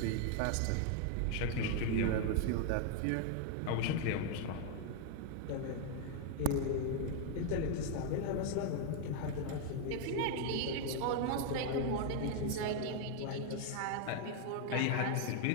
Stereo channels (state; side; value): different; both; correlation 0.00